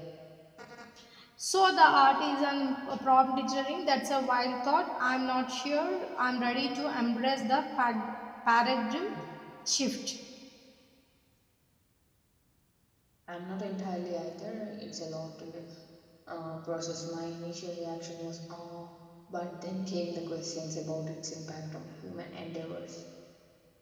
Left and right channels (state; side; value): identical; both; correlation 1.00